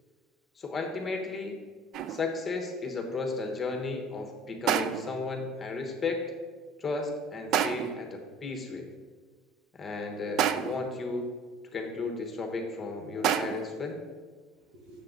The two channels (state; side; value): normal; both; correlation 0.47